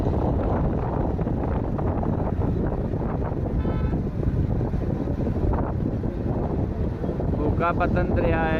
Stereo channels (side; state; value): both; identical; correlation 1.00